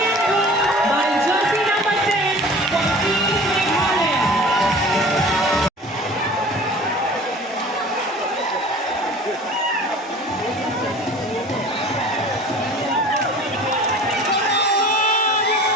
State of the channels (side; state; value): both; normal; correlation 0.43